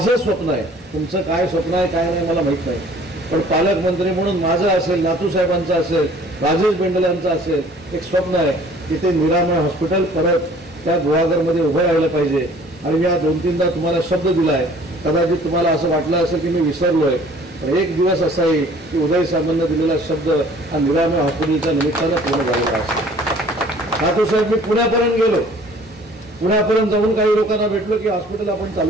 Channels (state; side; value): normal; both; correlation 0.53